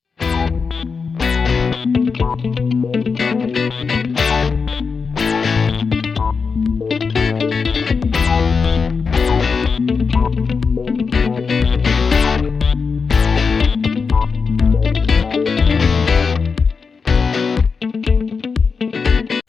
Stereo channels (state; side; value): quieter; right; 5.2 dB